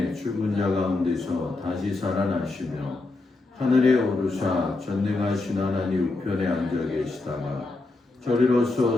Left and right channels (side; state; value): right; quieter; 3.3 dB